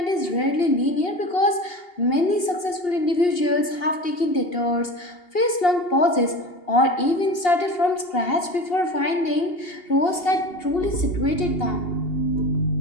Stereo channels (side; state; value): right; late; 2.8 ms